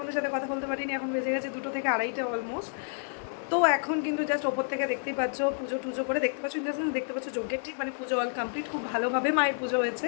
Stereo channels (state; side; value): silent; right; digital silence